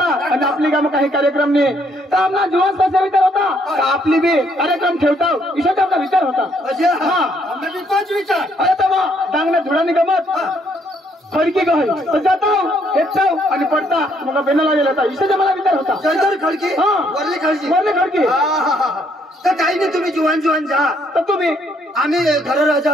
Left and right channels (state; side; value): normal; both; correlation 0.69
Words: आणि आपली कामं काही कार्यक्रम नाही तर आमना जुवान कसा विचार होता तर आपली बी कार्यक्रम ठेवता इशाचा आपला विचार होता. विचार अरे तर डांगण्या धुळानी गमत खडकी गहल तर जाता हेचाव आणि पडता मग बेनाला गेला होता इशाचा मला विचार होता. खडकी वरली खडकी तर काही नाही तुम्ही जुवान जा तर तुम्ही आम्ही घर राजा